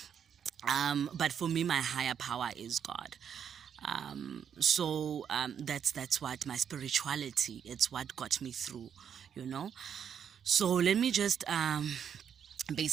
But for me, my higher power is God. So that's what my spirituality, it's what got me through. So let me just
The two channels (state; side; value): quieter; left; 8.1 dB